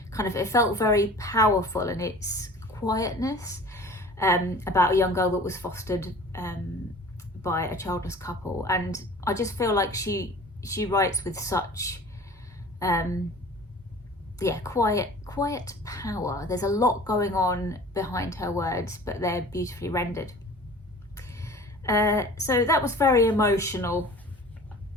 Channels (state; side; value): normal; both; correlation 0.44